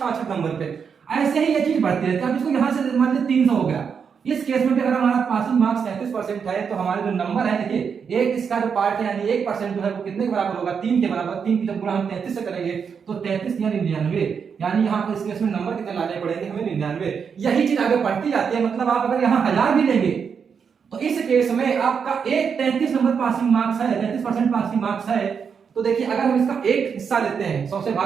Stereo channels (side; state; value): left; quieter; 6.5 dB